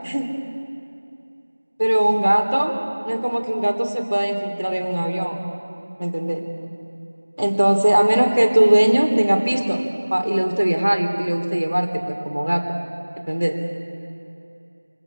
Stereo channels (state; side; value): inverted; both; correlation -1.00